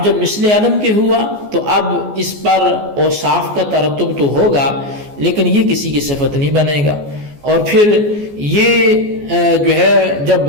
جب مثل علم کے ہوا تو اب اس پر اوصاف کا ترتب تو ہوگا لیکن یہ کسی کی صفت نہیں بنے گا، اور پھر یہ جو ہے جب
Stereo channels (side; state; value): left; late; 14 ms